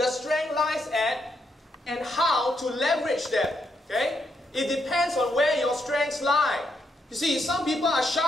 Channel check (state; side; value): normal; both; correlation 0.78